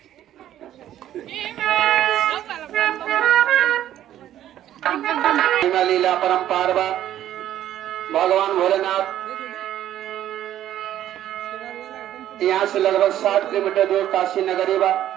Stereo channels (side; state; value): left; quieter; 12.0 dB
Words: लीला परम्पार भगवान भोलेनाथ यहाँ से लगभग 60 किलोमीटर दूर काशी नगरी बा,